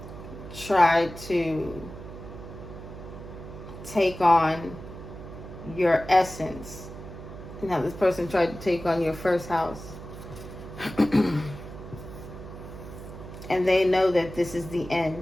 tried to take on your essence, and how this person tried to take on your first house. And they know that this is the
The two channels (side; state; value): right; noise; hum, 13 dB below the sound